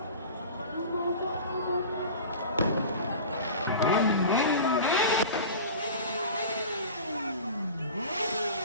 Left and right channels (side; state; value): both; inverted; correlation -0.36